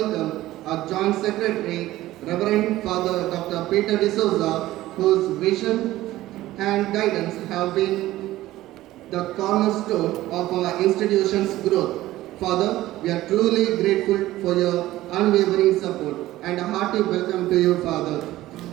our Joint Secretary, Reverend Father Dr. Peter D'Souza, whose vision and guidance have been the cornerstone of our institution's growth. Father, we are truly grateful for your unwavering support and a hearty welcome to you, Father.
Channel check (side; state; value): left; quieter; 15.9 dB